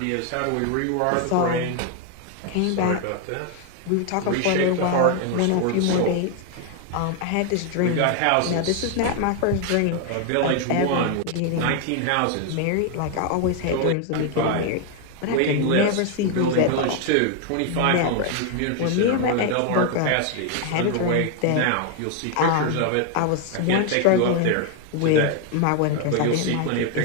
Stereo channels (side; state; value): both; different; correlation 0.01